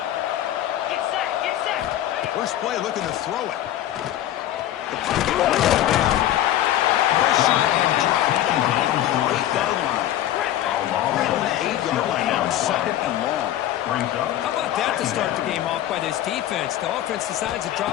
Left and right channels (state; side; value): quieter; right; 12.7 dB